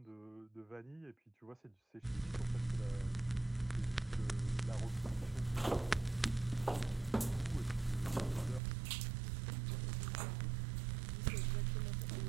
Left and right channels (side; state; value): left; drops out; at 8.6 s